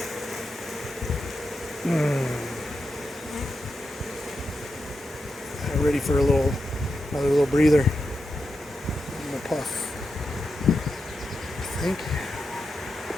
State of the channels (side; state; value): both; normal; correlation 0.87